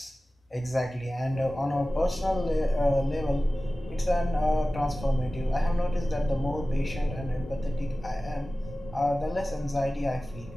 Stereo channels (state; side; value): normal; both; correlation 0.96